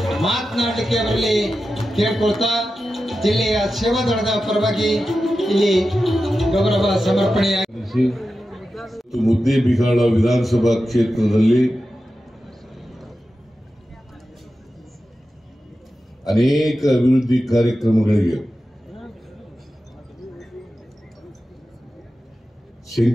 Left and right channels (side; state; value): both; normal; correlation 0.92